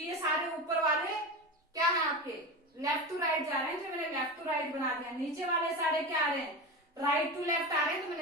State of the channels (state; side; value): normal; both; correlation 0.24